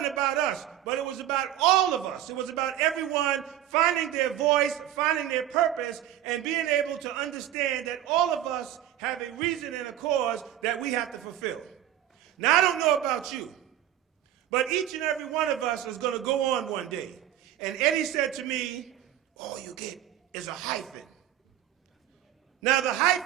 about us, but it was about all of us. It was about everyone finding their voice, finding their purpose, and being able to understand that all of us have a reason and a cause that we have to fulfill. Now, I don't know about you, but each and every one of us is going to go on one day. And Eddie said to me, all you get is a hyphen. Now, the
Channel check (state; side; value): quieter; left; 12.0 dB